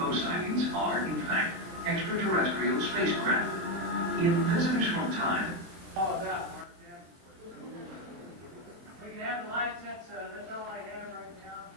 sightings are, in fact, extraterrestrial spacecraft. In Visitors from Time, All about Marc Davenport. We can have the lights. That's all I have right now.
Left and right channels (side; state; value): left; late; 23 ms